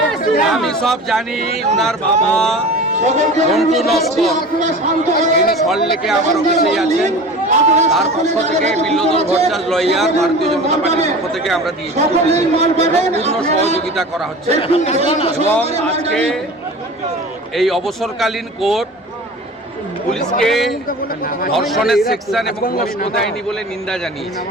আমি সব জানি, ওনার বাবা মন্টু নস্কর তিনি সল্টলেকে আমার অফিসেই আছেন। তার পক্ষ থেকে বিল্লদল ভট্টাচার্য লয়ার ভারতীয় জনতা পার্টির পক্ষ থেকে আমরা দিয়েছি, পূর্ণ সহযোগিতা করা হচ্ছে। এবং আজকে এই অবসরকালীন কোর্ট পুলিশকে ধর্ষণের সেকশন এবং কষ্ট দেয়নি বলে নিন্দা জানিয়েছে।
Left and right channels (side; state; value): both; normal; correlation 0.37